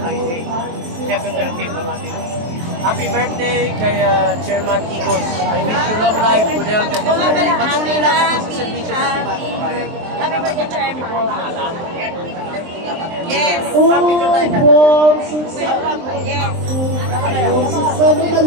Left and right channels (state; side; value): late; left; 23 ms